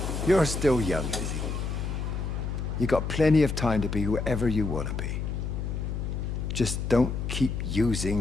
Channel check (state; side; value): noise; left; hum, 3 dB below the sound